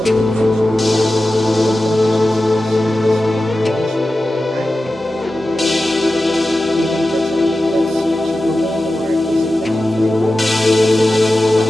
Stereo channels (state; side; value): normal; both; correlation 0.94